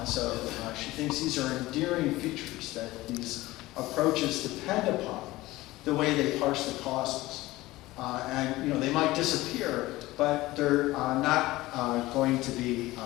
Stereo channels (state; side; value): quieter; right; 18.4 dB